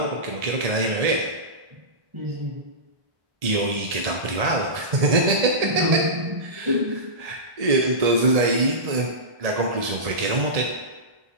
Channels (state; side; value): late; left; 1.7 ms